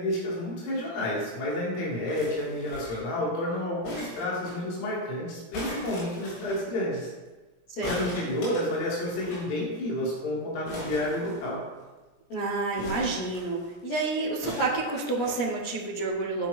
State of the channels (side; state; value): right; late; 17 ms